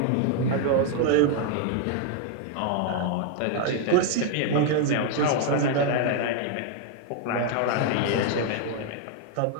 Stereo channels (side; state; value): both; different; correlation 0.00